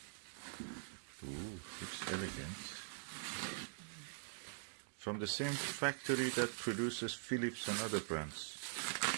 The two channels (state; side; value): silent; left; digital silence